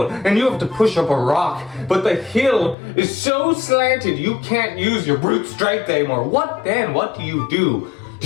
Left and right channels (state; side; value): drops out; right; at 2.8 s